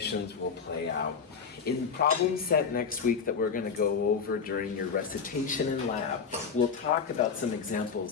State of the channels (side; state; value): right; quieter; 6.0 dB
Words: will play out. In the problem set next week that we're going to go over during your recitation in lab, we'll talk about some